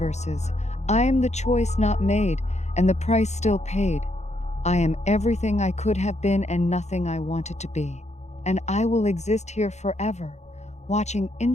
I am the choice not made and the price still paid. I am everything I could have been and nothing I wanted to be. And I will exist here forever, watching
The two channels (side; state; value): right; late; 0.33 ms